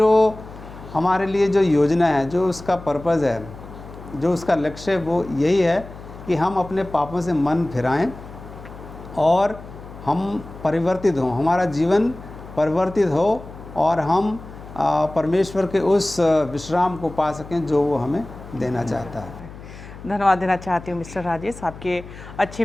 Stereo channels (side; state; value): left; noise; hum, 15 dB below the sound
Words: हमारे लिए जो योजना है, जो उसका पर्पज़ है, जो उसका लक्ष्य है, वो यही है कि हम अपने पापों से मन फिराएं और हम परिवर्तित हों, हमारा जीवन परिवर्तित हो और हम परमेश्वर के उस विश्राम को पा सकें जो वो हमें देना चाहता है। धन्यवाद देना चाहती हूँ मिस्टर राजेश आपके अच्छे